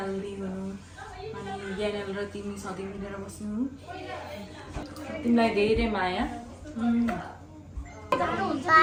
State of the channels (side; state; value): both; identical; correlation 1.00